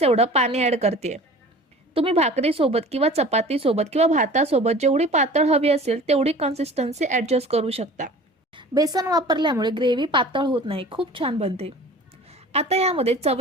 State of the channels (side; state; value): both; normal; correlation 0.42